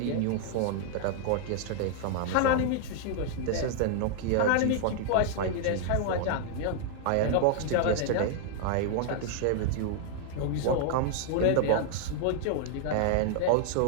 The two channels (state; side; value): different; both; correlation 0.00